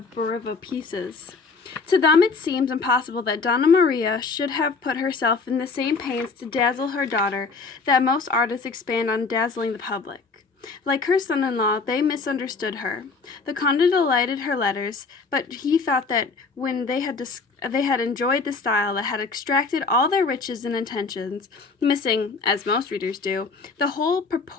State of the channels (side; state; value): right; quieter; 4.3 dB